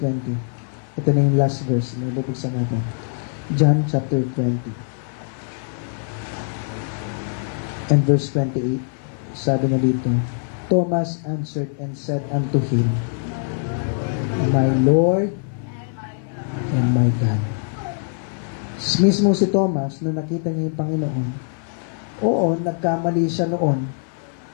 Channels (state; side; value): silent; right; 57 dB below the other